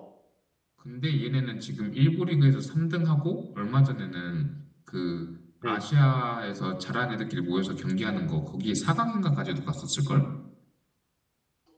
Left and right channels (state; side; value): identical; both; correlation 1.00